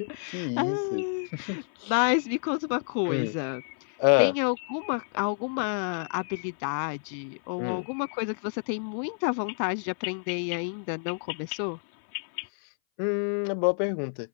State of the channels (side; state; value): right; silent; 59 dB below the other